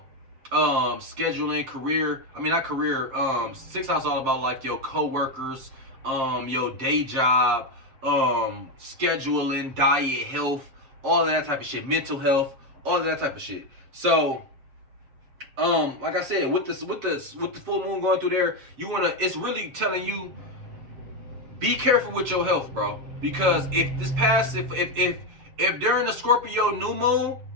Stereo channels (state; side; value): late; left; 7.4 ms